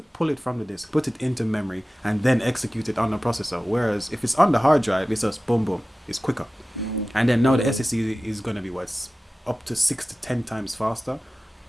pull it from the disk, put it into memory, and then execute it on the processor. Whereas if it's on the hard drive, it's just boom boom. It's quicker. And then now the SSD is going to be what's up to 6 to 10 times faster.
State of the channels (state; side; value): normal; both; correlation 0.96